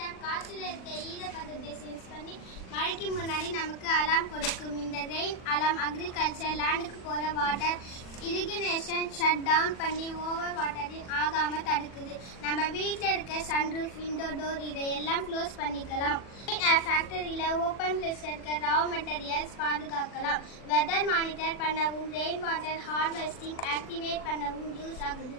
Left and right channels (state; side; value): late; right; 40 ms